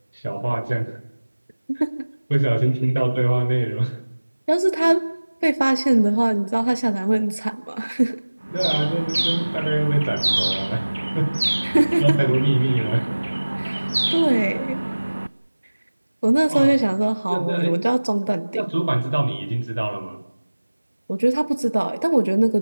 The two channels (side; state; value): both; inverted; correlation -1.00